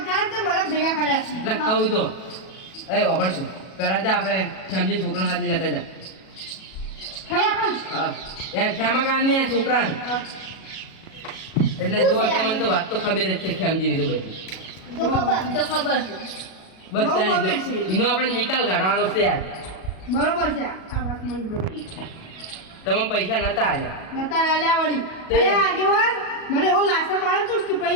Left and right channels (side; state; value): right; late; 37 ms